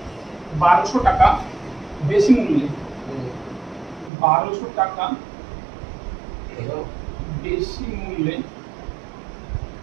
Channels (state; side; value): drops out; left; at 4.1 s